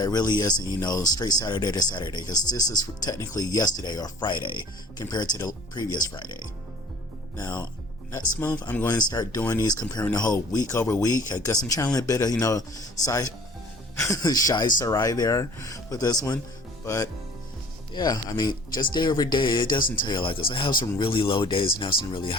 really isn't, straight Saturday to Saturday, because this is technically yesterday or Friday compared to the previous Friday. Now, next month, I'm going to start doing these comparing the whole week over week. I guess I'm trying a bit of, shy Sarai there with this one, but yeah, just day over day, it doesn't tell you like this. I have some really low days and have some really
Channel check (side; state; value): both; normal; correlation 0.48